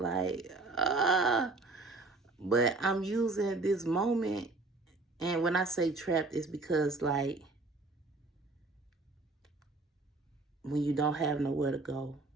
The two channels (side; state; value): left; quieter; 3.4 dB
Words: but I'm using this moment. And when I say trapped, it's because, like, when you don't have nowhere to go,